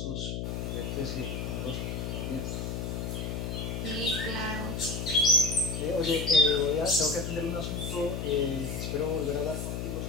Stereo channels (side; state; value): left; noise; hum, 3 dB below the sound